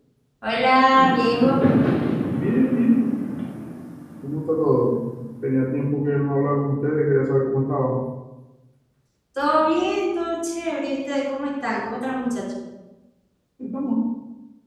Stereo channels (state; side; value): identical; both; correlation 1.00